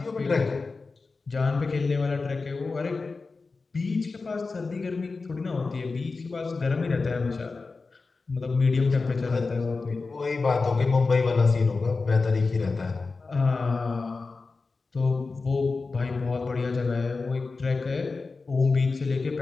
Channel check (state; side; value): quieter; right; 4.1 dB